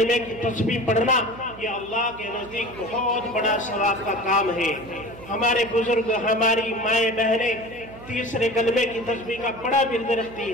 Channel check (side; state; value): right; noise; hum, 17 dB below the sound